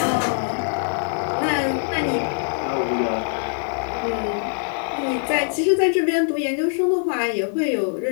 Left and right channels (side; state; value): right; silent; digital silence